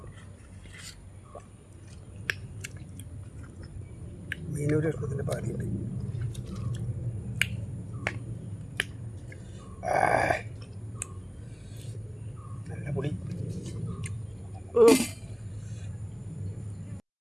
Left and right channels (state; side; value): identical; both; correlation 1.00